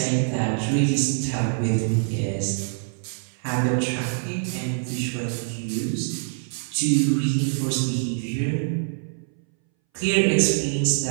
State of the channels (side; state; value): left; silent; 61 dB below the other